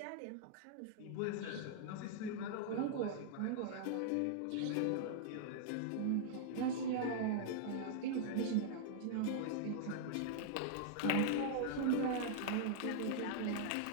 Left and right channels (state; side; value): different; both; correlation -0.01